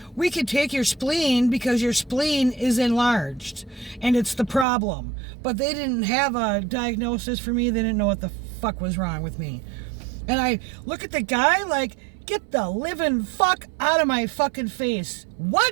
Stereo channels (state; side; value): drops out; left; at 4.7 s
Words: we could take your spleen because your spleen is enlarged, and it's the problem. But they didn't have a diagnosis for me. They didn't know what the fuck was wrong with me. And I look at the guy like, get the living fuck out of my fucking face.